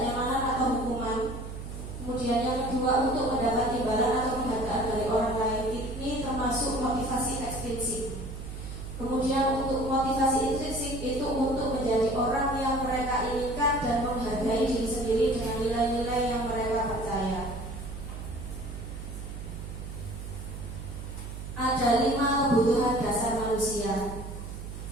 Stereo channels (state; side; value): noise; right; hum, 9 dB below the sound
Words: atau hukuman. Kemudian yang kedua untuk mendapat imbalan atau penghargaan dari orang lain. Ini termasuk motivasi ekstrinsik. Kemudian untuk motivasi intrinsik itu untuk menjadi orang yang mereka inginkan dan menghargai diri sendiri dengan nilai-nilai yang mereka percaya. Ada 5 kebutuhan dasar manusia.